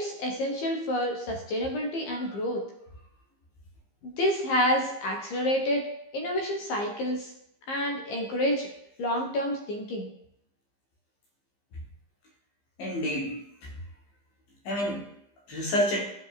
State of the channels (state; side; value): late; right; 15 ms